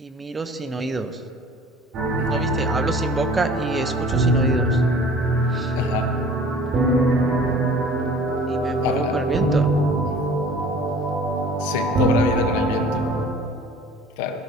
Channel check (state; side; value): normal; both; correlation 0.47